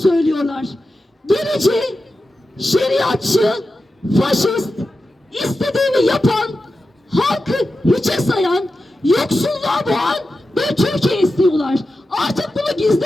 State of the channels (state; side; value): normal; both; correlation 0.92